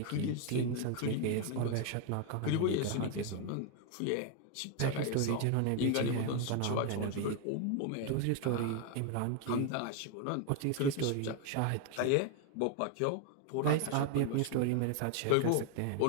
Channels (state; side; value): different; both; correlation 0.01